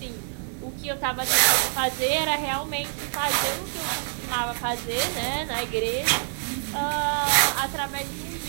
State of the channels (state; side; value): silent; left; digital silence